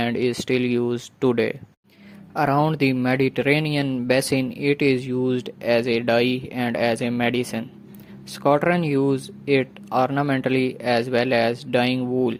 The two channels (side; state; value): both; identical; correlation 1.00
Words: is still used today. Around the Mediterranean basin, it is used as a dye and as a medicine. Scots use it ornamentally as well as dyeing wool,